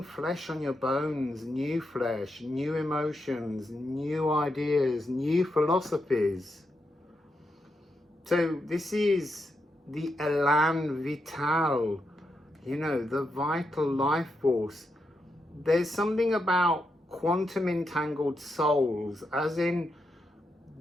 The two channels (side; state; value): both; normal; correlation 0.84